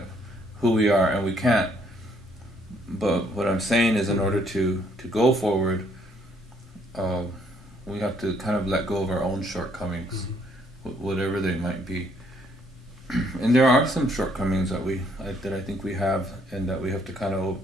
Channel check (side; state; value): both; normal; correlation 0.67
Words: who we are, and we can't. But what I'm saying is, in order to go forward, we have to kind of let go of our own shortcomings, whatever they might be. And there are some shortcomings that I think we have, and that we have to kind of